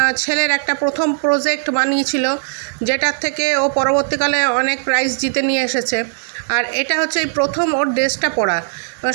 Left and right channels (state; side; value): silent; left; digital silence